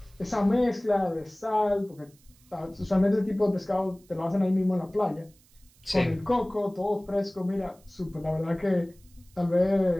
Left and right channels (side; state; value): right; noise; hiss, 30 dB below the sound